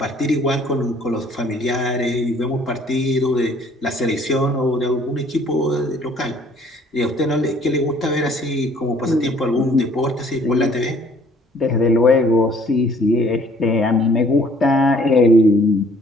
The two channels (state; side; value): normal; both; correlation 0.58